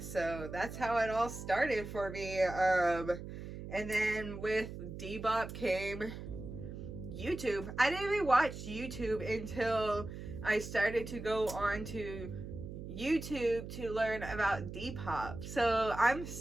So that's how it all started for me. And then with Debop came YouTube. I didn't even watch YouTube until I started to go on to YouTube to learn about Depop. So I'm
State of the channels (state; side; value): noise; right; hum, 9 dB below the sound